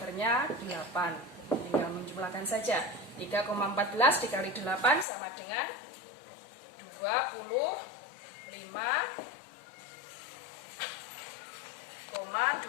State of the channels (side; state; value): right; drops out; at 5.1 s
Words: 8. Tinggal menjumlahkan saja. 3,14 dikali 8 sama dengan